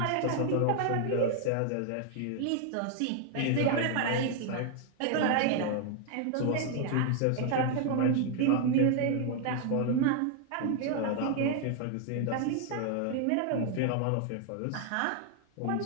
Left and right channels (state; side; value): different; both; correlation 0.00